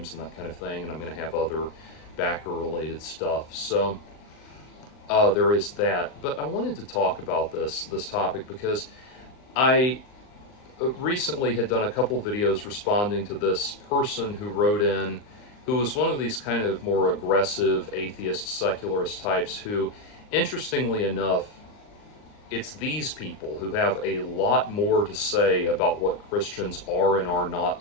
and that kind of thing, and I'm going to have other backer related stuff. So there is that. But I wanted to talk about this topic because I recently had done a couple videos responding to this person who wrote in, who was one of these kind of more aggressive atheist secularist types who, interestingly enough, it's these people who have a lot more to say about what Christians are and are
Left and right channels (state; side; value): late; right; 39 ms